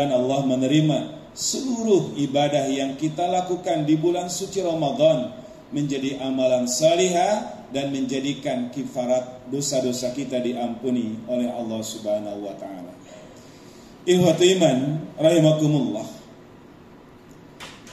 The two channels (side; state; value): both; identical; correlation 1.00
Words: Allah menerima seluruh ibadah yang kita lakukan di bulan suci Ramadan menjadi amalan salihah dan menjadikan kifarat dosa-dosa kita diampuni oleh Allah Subhanahu wa taala. Ikhwatu iman rahimakumullah.